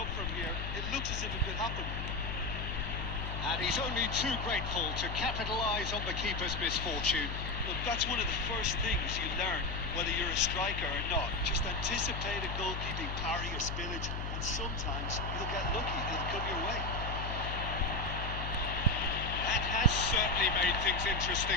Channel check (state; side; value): noise; left; hum, 4 dB below the sound